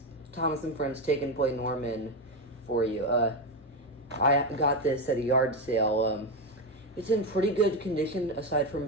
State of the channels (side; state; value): both; normal; correlation 0.12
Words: Thomas and Friends Take and Play Norman for you. I got this at a yard sale. It's in pretty good condition aside from